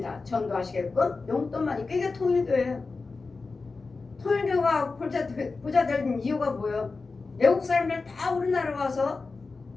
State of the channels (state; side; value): quieter; right; 4.0 dB